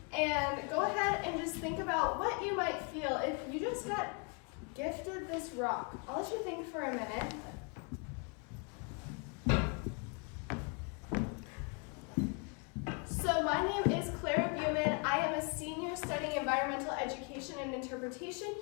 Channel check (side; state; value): right; quieter; 35.6 dB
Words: and go ahead and just think about what you might feel if you just got gifted this rock. I'll let you think for a minute. So my name is Clarah. I am a senior studying environmental education and interpretation